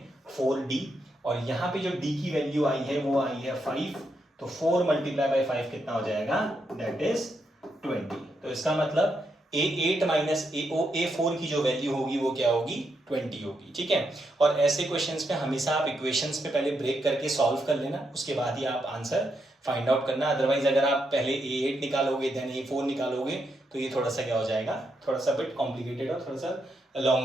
4d, और यहाँ पे जो d की वैल्यू आई है वो आई है 5, तो 4 × 5 कितना हो जाएगा, दैट इज 20। तो इसका मतलब a8 - a4 की जो वैल्यू होगी वो क्या होगी, 20 होगी, ठीक है। और ऐसे क्वेश्चंस पे हमेशा आप इक्वेशंस पे पहले ब्रेक करके सॉल्व कर लेना, उसके बाद ही आप आंसर फाइंड आउट करना। अदरवाइज अगर आप पहले a8 निकालोगे देन a4 निकालोगे तो ये थोड़ा सा क्या हो जाएगा, थोड़ा सा बिट कॉम्प्लिकेटेड और थोड़ा सा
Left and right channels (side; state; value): both; normal; correlation 0.81